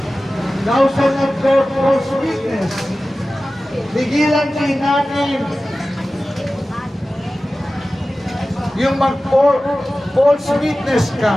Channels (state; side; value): normal; both; correlation 0.96